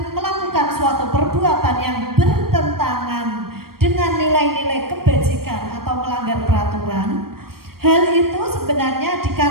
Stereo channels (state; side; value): late; left; 0.94 ms